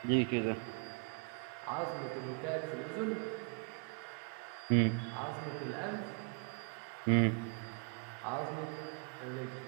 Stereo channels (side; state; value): left; quieter; 36.8 dB